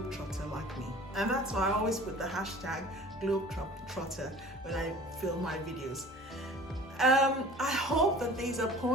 like me. And that's why I always put the hashtag globe-trotter when I film my videos. I hope that these are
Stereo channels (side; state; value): both; normal; correlation 0.44